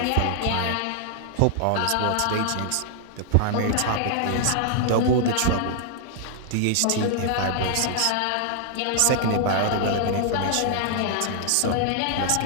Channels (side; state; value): both; different; correlation -0.01